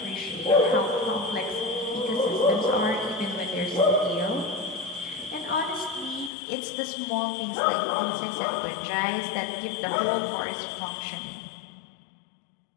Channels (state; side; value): drops out; right; at 6.3 s